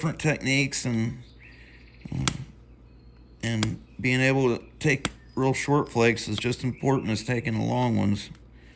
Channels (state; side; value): identical; both; correlation 1.00